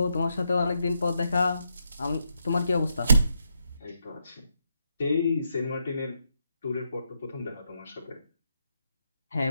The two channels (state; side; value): inverted; both; correlation -0.80